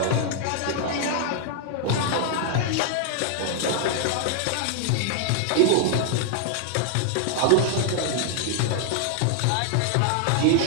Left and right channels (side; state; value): both; different; correlation -0.01